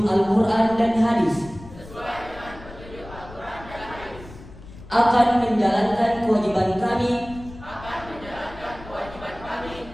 Al-Quran dan Hadis, akan menjalankan kewajiban kami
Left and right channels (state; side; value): noise; left; rumble, 17 dB below the sound